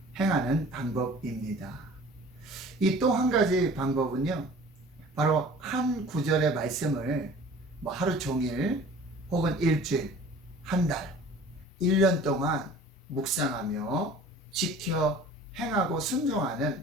행하는 방법입니다. 이 또 한 가지 방법은요. 바로 한 구절의 말씀을 하루 종일 혹은 일주일, 한 달, 1년 동안 묵상하며 지켜 행하고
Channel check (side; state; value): both; normal; correlation 0.46